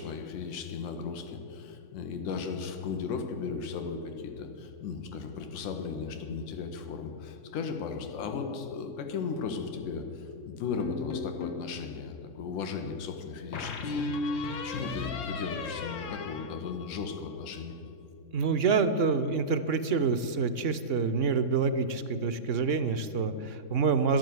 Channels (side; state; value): right; late; 3.6 ms